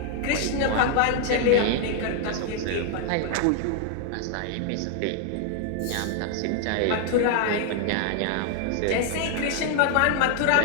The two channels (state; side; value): different; both; correlation 0.00